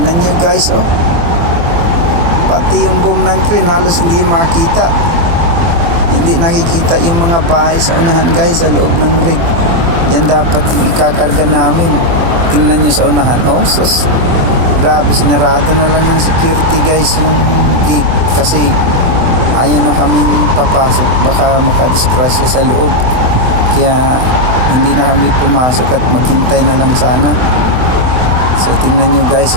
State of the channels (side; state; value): left; late; 24 ms